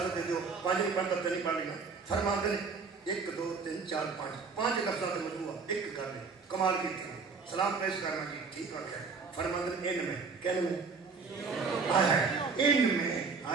دے دو 5 منٹ تک نہیں پڑھنا. فرماتے ہیں 1 2 3 4 5 لفظوں کا مجموعہ ایک کر لیں. کمال کی تھی سلام پیش کرنا کی ٹھیک بات ہے. فرماتے ہیں ان میں کہنے میں آیا ہے ان میں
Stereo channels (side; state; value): left; quieter; 4.9 dB